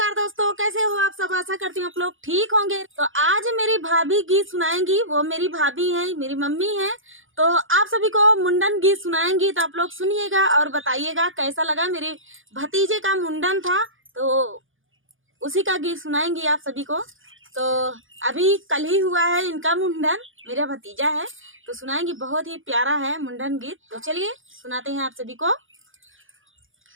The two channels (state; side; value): late; left; 0.58 ms